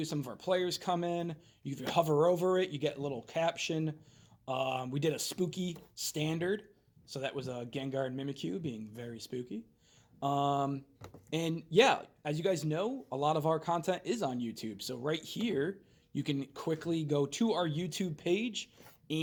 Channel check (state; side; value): identical; both; correlation 1.00